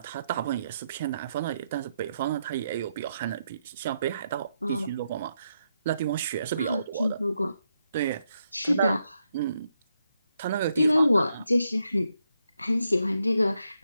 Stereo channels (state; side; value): inverted; both; correlation -0.80